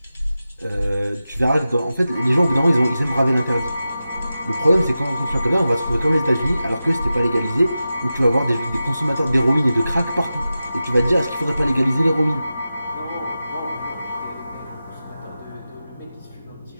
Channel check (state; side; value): inverted; both; correlation -0.93